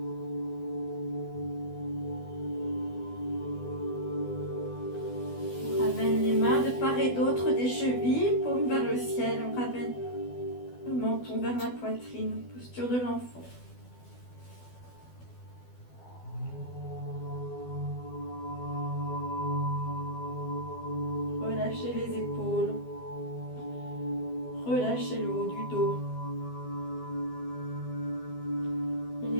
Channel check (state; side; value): late; right; 12 ms